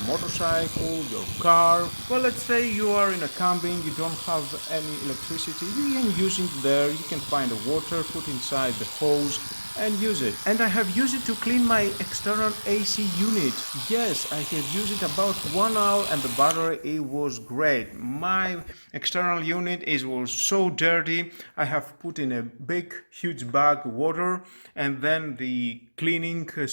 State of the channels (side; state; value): both; inverted; correlation -1.00